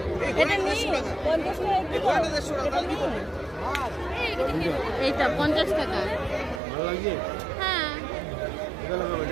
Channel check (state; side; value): drops out; left; at 6.6 s